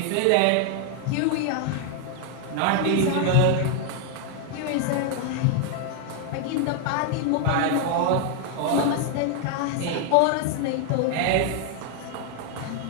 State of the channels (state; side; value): different; both; correlation 0.00